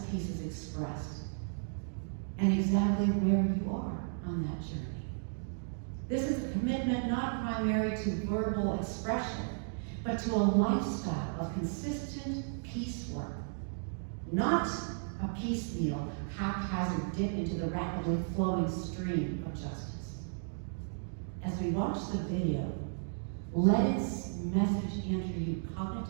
peace is expressed, and exactly where you are on that journey? This is a commitment not primary to verbal expression, but to a lifestyle of consistent peace work, not a piecemeal, haphazard dip into the rapidly flowing stream of justice. As we watch the video, let its message enter you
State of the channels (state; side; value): silent; left; digital silence